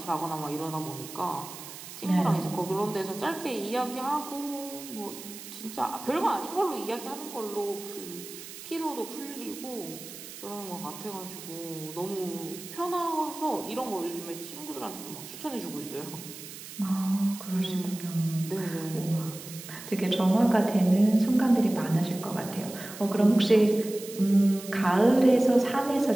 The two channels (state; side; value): noise; right; hiss, 13 dB below the sound